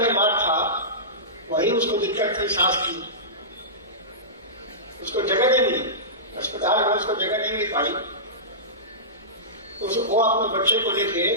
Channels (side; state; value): both; normal; correlation -0.20